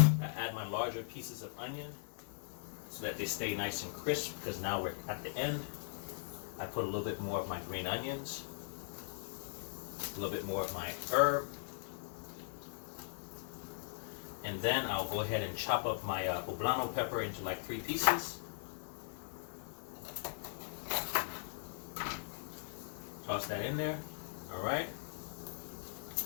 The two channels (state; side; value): silent; right; digital silence